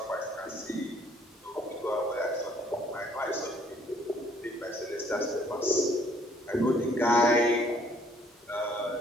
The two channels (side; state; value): both; normal; correlation 0.62